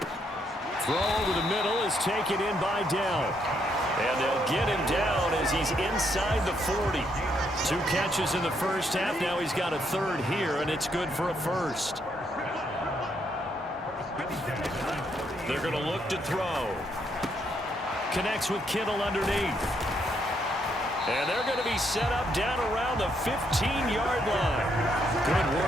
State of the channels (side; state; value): both; normal; correlation 0.74